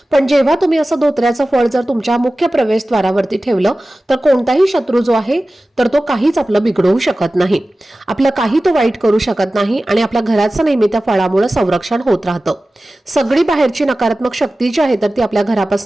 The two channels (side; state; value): both; normal; correlation 0.96